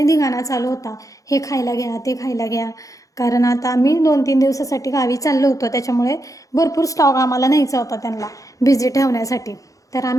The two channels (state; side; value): late; right; 0.16 ms